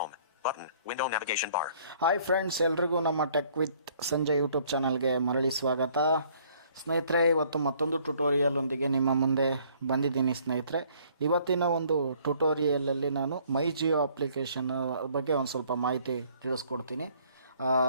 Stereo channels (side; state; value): both; inverted; correlation -0.60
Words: Button. Window navigation bar. Hi friends, ಎಲ್ರಿಗೂ ನಮ್ಮ tech with Sanjay YouTube ಚಾನಲ್ಗೆ ಮರಳಿ ಸ್ವಾಗತ. ಸ್ನೇಹಿತರೆ, ಇವತ್ತು ಮತ್ತೊಂದು ಟ್ಯುಟೋರಿಯಲ್ ಒಂದಿಗೆ ನಿಮ್ಮ ಮುಂದೆ ಬಂದಿದ್ದೀನಿ. ಸ್ನೇಹಿತರೆ, ಇವತ್ತಿನ ಒಂದು ಟ್ಯುಟೋರಿಯಲಲ್ಲಿ ನಾನು ಮೈ ಜಿಯೋ ಅಪ್ಲಿಕೇಶನ್ ಬಗ್ಗೆ ಒಂದು ಸ್ವಲ್ಪ ಮಾಹಿತಿ ತಿಳಿಸ್ಕೊಡ್ತೀನಿ.